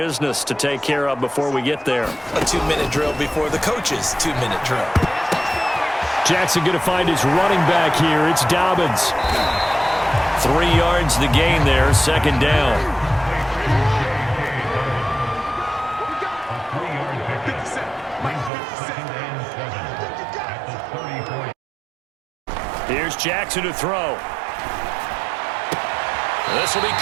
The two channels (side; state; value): left; drops out; at 18.5 s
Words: to take care of before we get there. A 2-minute drill before the coach's 2-minute drill. Jackson going to find his running back here. It's Dobbins. 3 yards the gain there, second down. Here's Jackson to throw. This will be